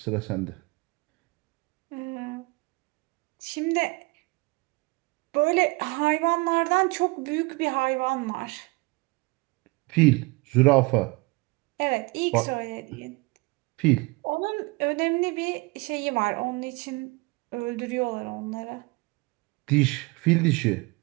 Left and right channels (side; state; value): left; quieter; 26.1 dB